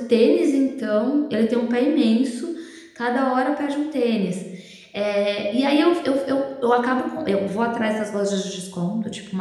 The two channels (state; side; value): identical; both; correlation 1.00